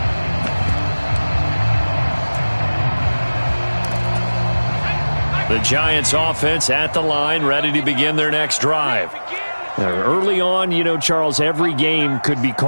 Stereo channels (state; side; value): inverted; both; correlation -1.00